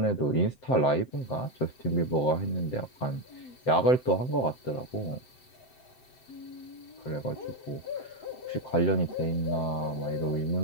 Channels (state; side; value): late; right; 7.8 ms